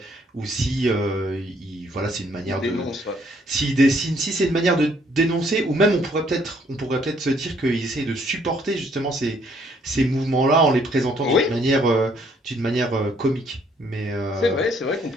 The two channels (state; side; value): normal; both; correlation 0.65